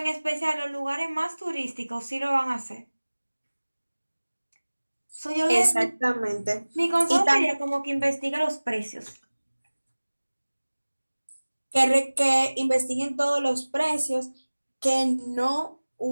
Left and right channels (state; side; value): inverted; both; correlation -1.00